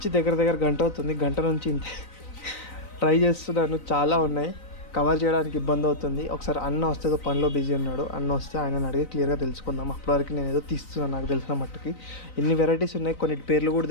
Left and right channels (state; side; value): late; right; 3.9 ms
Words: దగ్గర గంట అవుతుంది, గంట నుంచి ఇంతే ట్రై చేస్తున్నాను. చాలా ఉన్నాయి, కవర్ చేయడానికి ఇబ్బంది అవుతుంది. ఒకసారి అన్న వస్తే పనిలో బిజీ ఉన్నాడు, అన్న వస్తే ఆయనని అడిగి క్లియర్గా తెలుసుకుందాం. అప్పటివరకు నేను ఏదో తీస్తున్నాను నాకు తెలిసిన మట్టుకి. ఎన్ని వెరైటీస్ ఉన్నాయి, కొన్ని పేర్లు కూడా